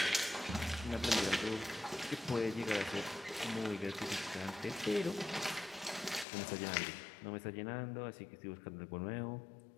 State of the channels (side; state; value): right; drops out; at 6.2 s